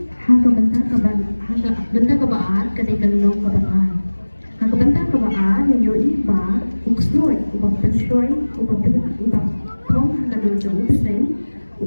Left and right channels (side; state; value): both; inverted; correlation -1.00